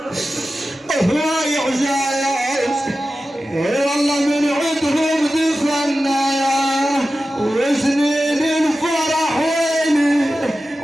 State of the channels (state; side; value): normal; both; correlation 0.94